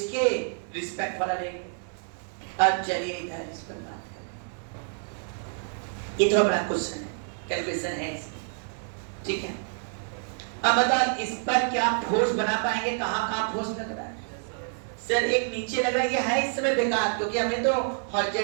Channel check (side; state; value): left; silent; 59 dB below the other